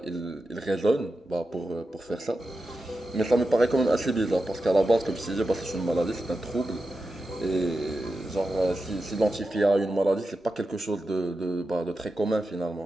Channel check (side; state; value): both; normal; correlation 0.91